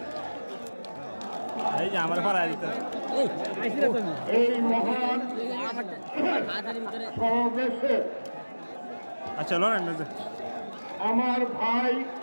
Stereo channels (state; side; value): inverted; both; correlation -1.00